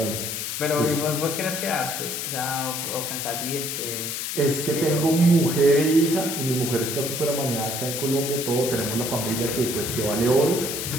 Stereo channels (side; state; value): left; noise; hiss, 4 dB below the sound